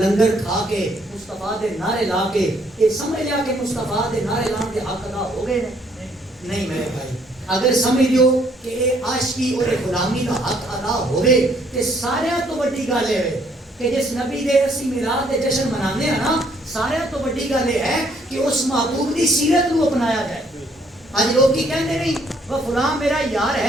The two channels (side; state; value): both; normal; correlation 0.66